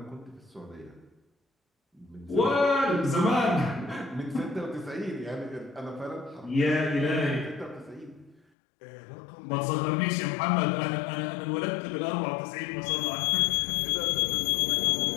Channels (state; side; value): drops out; right; at 8.4 s